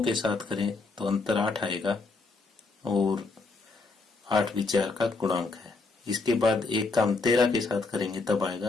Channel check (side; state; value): right; quieter; 3.8 dB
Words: के साथ करें तो अंतर 8 आएगा, और 8 भी 4 का गुणांक है। इसके बाद एक का हम 13 के साथ करेंगे तब